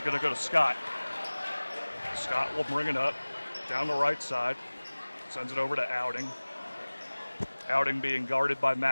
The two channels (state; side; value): inverted; both; correlation -1.00